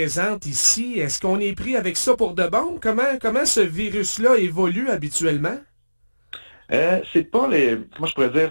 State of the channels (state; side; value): inverted; both; correlation -1.00